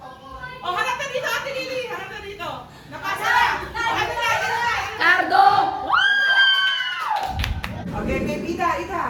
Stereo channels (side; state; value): both; identical; correlation 1.00